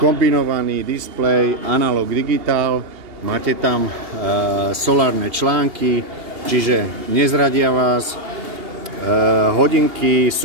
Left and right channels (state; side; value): late; left; 2.8 ms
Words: kombinovaný displej, analog digitál, máte tam solárne články, čiže nezradia vás. Hodinky